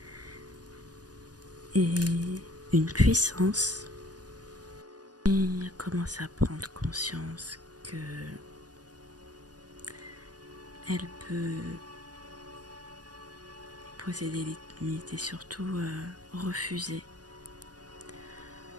et une puissance. Et elle commence à prendre conscience que elle peut poser des limites et surtout refuser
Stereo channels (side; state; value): left; late; 0.69 ms